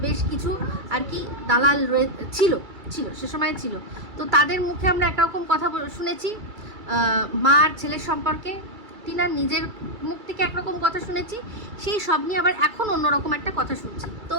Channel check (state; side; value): late; left; 2.3 ms